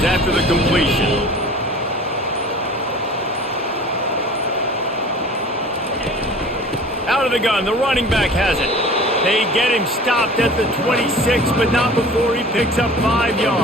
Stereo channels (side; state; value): both; normal; correlation 0.43